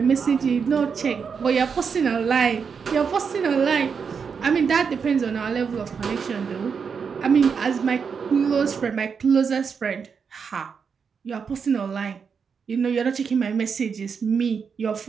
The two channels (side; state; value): left; quieter; 6.1 dB